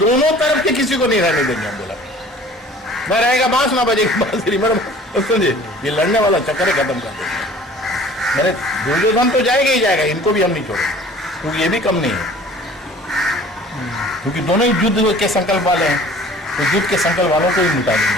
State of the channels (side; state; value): both; normal; correlation 0.49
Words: तरफ के किसी को नहीं रहने देंगे हम। बोला मैं रहेगा बांस ना बजेगी बांसुरी, समझे? ये लड़ने वाला चक्कर खत्म कर देंगे। मैंने दुर्योधन तो जाएगा ही जाएगा, इनको भी हम नहीं छोड़ेंगे, क्योंकि ये भी कम नहीं है, क्योंकि दोनों ही युद्ध के संकल्प वाले हैं। तो युद्ध के संकल्प वालों को ही मिटा